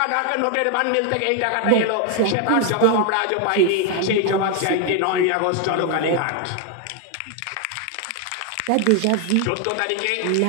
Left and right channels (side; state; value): both; different; correlation 0.01